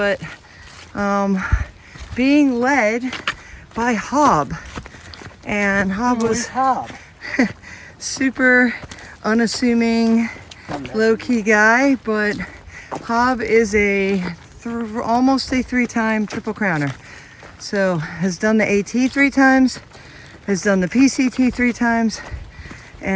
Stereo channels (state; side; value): identical; both; correlation 1.00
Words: being led by Hob. And Hob was Hob? super unassuming, low-key guy, but Hob is almost a 3-time Triple Crowner. So has done the AT 3 times, has done the PCT 3 times,